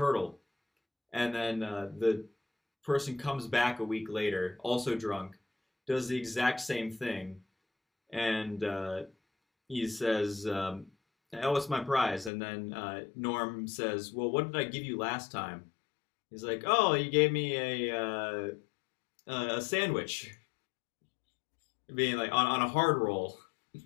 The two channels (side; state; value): right; drops out; at 12.3 s